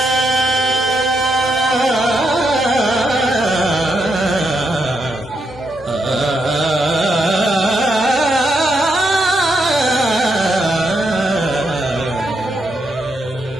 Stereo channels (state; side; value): normal; both; correlation 0.81